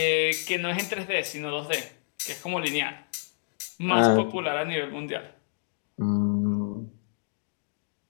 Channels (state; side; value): silent; right; digital silence